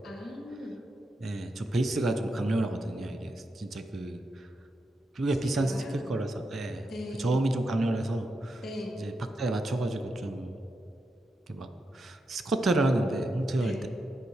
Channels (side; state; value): both; normal; correlation 0.85